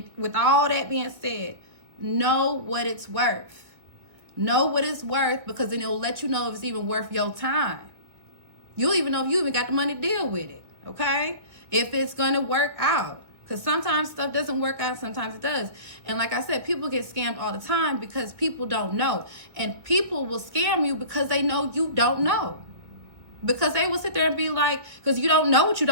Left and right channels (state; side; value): late; left; 1.7 ms